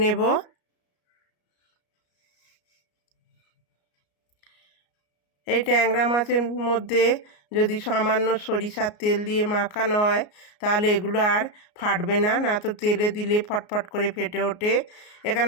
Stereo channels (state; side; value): late; right; 33 ms